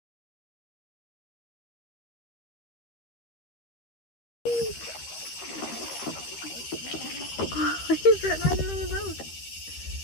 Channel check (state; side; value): late; right; 13 ms